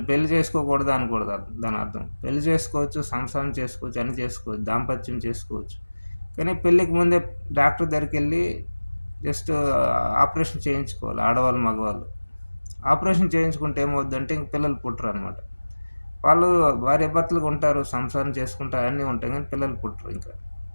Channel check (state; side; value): inverted; both; correlation -1.00